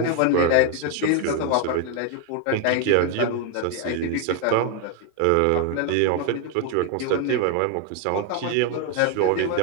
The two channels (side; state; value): both; different; correlation 0.01